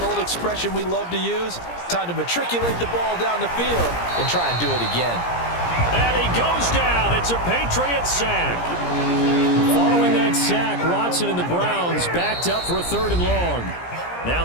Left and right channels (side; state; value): right; late; 17 ms